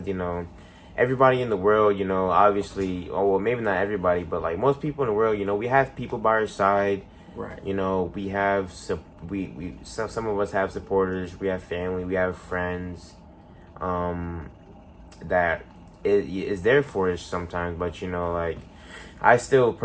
everybody in the world, obviously, oh well, maybe not everybody, but like most people in the world, we have people by our side. Right. We have some of us have supporters, we have family, we have friends, that is there for us sometimes, but like I still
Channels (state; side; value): identical; both; correlation 1.00